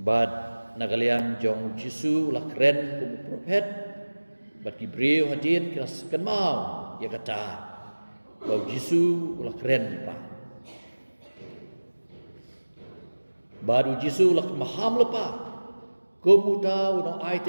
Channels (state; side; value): inverted; both; correlation -1.00